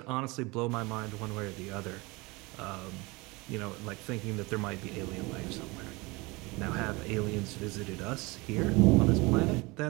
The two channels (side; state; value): left; quieter; 24.6 dB